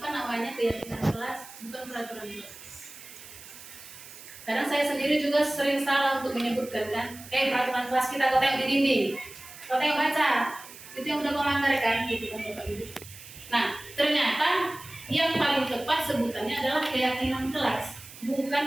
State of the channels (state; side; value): noise; right; hiss, 17 dB below the sound